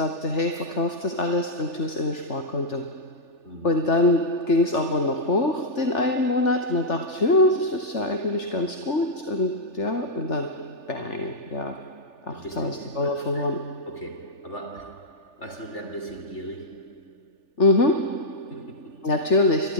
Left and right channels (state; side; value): late; right; 3.4 ms